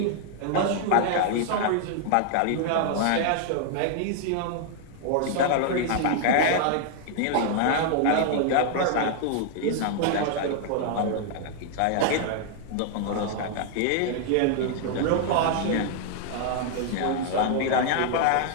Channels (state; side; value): different; both; correlation 0.00